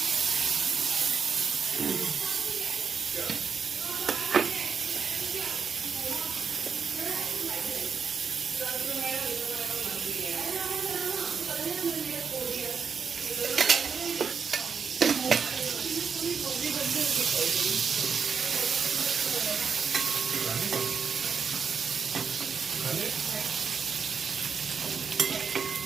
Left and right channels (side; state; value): left; quieter; 6.1 dB